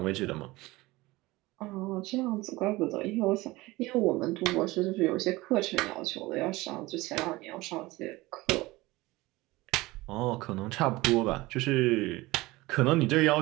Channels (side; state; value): left; quieter; 20.3 dB